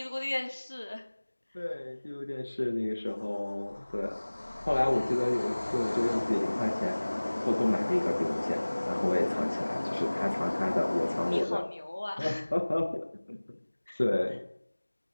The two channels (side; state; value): both; inverted; correlation -1.00